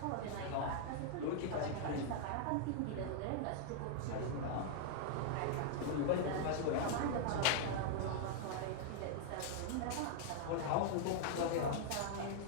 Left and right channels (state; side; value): different; both; correlation -0.01